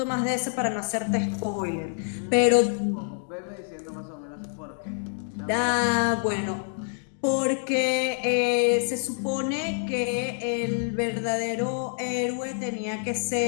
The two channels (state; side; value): silent; right; 60 dB below the other